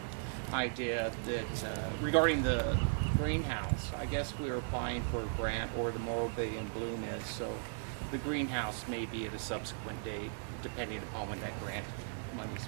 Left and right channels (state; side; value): silent; left; digital silence